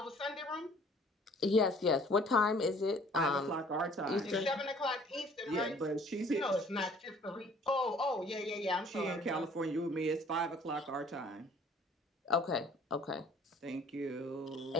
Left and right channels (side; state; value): both; normal; correlation 0.55